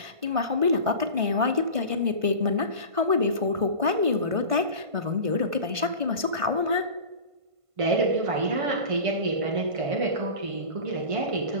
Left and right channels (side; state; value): left; late; 1.5 ms